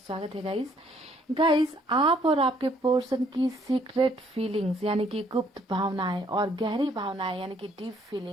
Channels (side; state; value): both; normal; correlation 0.65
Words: है गाइस। आप और आपके पर्सन की सीक्रेट फीलिंग्स यानी कि गुप्त भावनाएं और गहरी भावनाएं यानी कि डीप